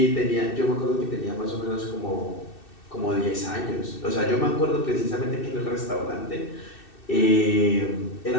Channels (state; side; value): late; right; 2.6 ms